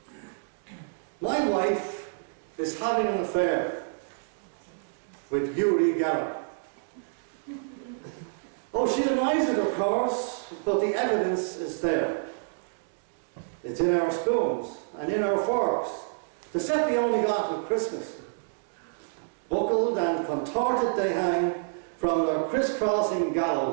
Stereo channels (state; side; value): silent; left; digital silence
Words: My wife is having an affair with Uri Geller. Oh, she denies it, of course, but the evidence is there. It's in our spoons and in our forks. The set we only got at Christmas. Buckled and contorted they hang from their crisscrossing